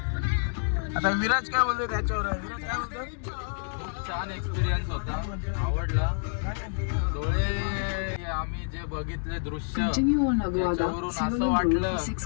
आता विराज काय बोलतोय त्याच्यावर. विराज काय बोलतो? छान एक्सपिरियन्स होता, आवडला. डोळे आम्ही जे बघितले दृश्य त्याच्यावरून असं वाटलं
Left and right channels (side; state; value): right; silent; digital silence